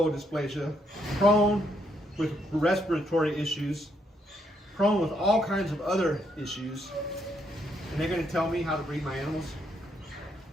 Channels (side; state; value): both; normal; correlation 0.74